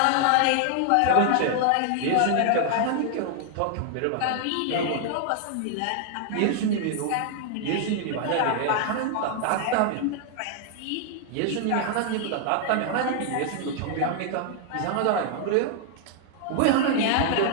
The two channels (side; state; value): both; different; correlation 0.00